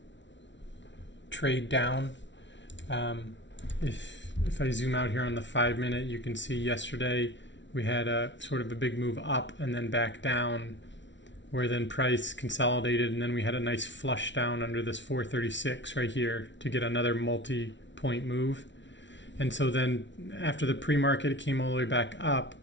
trade down. If I zoom out here on the 5-minute, you can see yesterday we had a sort of a big move up and then back down, where then price consolidated, and then we had a nice flush down under this 436 right here to get another multi-point move. And so then after the pre-market, it came all the way back up,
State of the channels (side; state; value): right; late; 0.53 ms